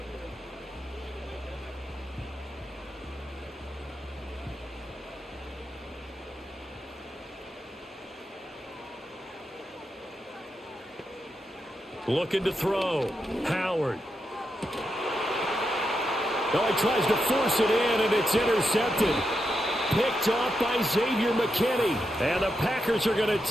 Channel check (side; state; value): both; normal; correlation 0.85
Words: Looking to throw. Howard. Oh, he tries to force it in, and it's intercepted. Picked off by Xavier McKinney. And the Packers are going to